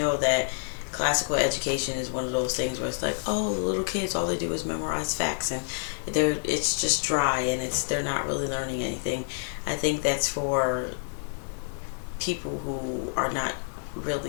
that classical education is one of those things where it's like, oh, the little kids, all they do is memorize facts and it's just dry and they're not really learning anything. I think that's for people who are not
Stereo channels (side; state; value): right; silent; digital silence